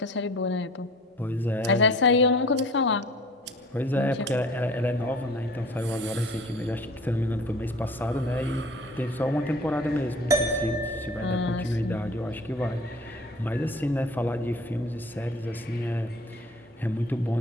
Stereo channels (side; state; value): both; normal; correlation 0.45